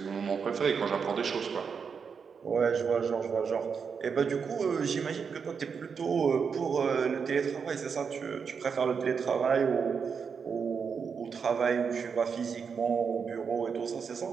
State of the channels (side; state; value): left; quieter; 6.1 dB